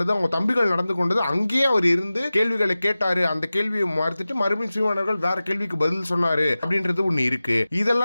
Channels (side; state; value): both; inverted; correlation -0.96